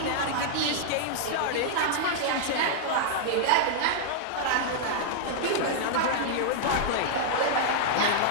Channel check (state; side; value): different; both; correlation -0.01